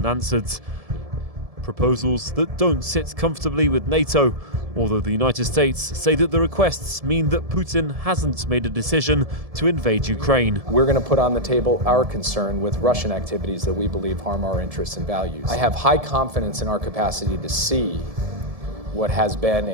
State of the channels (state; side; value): late; left; 1.7 ms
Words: Proposals that don't sit comfortably with NATO, although the United States say that the requests mean that Putin hasn't made a decision to invade Ukraine. We're going to put on the table our concern with Russian activities that we believe harm our interests and values. I have high confidence in our capacity to see what has been